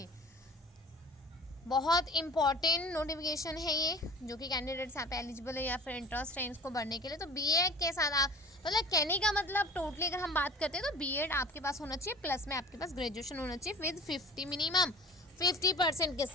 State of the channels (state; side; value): normal; both; correlation 0.43